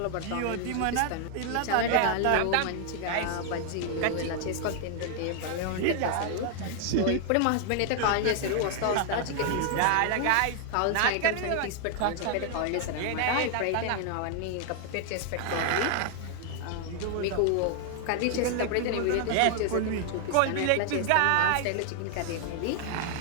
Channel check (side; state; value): both; different; correlation 0.00